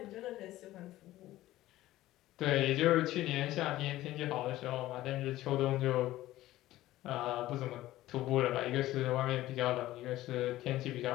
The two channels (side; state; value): right; quieter; 15.6 dB